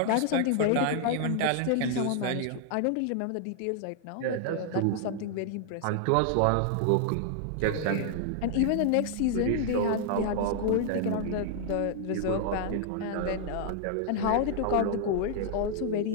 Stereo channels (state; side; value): different; both; correlation -0.01